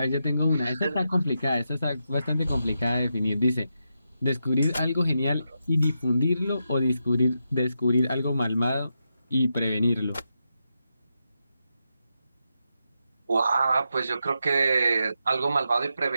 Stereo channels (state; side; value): inverted; both; correlation -0.86